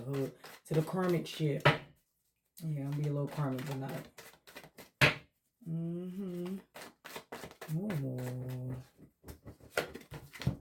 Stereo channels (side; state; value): both; identical; correlation 1.00